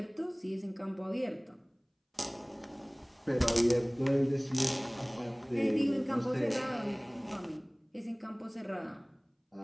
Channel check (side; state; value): both; identical; correlation 1.00